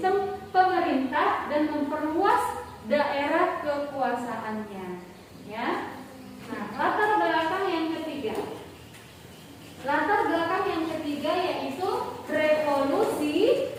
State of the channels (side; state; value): both; identical; correlation 1.00